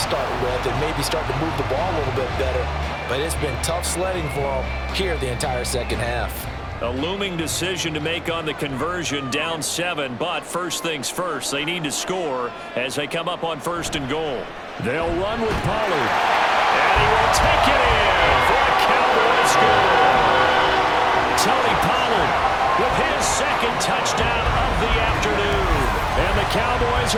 with and maybe start to move the ball a little bit better. But it's been tough sledding for them here the entire second half. A looming decision to make on the conversion, down 7, but first things first, they need to score as they come up on 1st and goal. They'll run with Pollard, and he will take it in for a Cowboys score. Tony Pollard with his 2nd touchdown of the afternoon. And the Cowboys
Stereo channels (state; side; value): identical; both; correlation 1.00